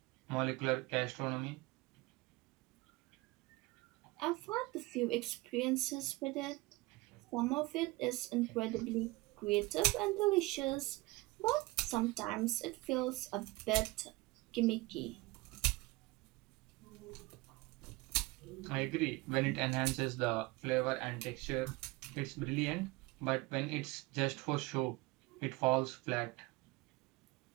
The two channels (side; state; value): left; quieter; 22.3 dB